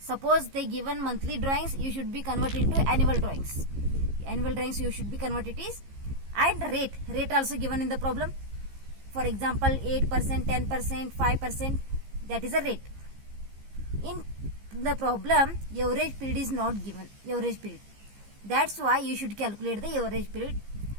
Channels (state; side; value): late; left; 15 ms